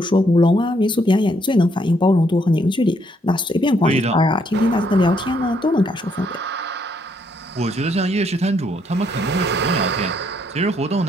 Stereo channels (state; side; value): normal; both; correlation 0.71